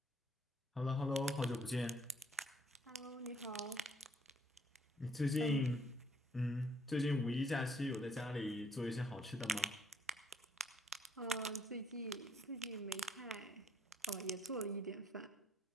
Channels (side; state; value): both; normal; correlation 0.67